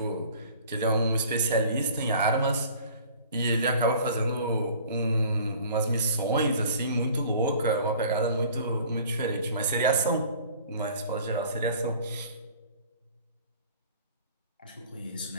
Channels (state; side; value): inverted; both; correlation -0.49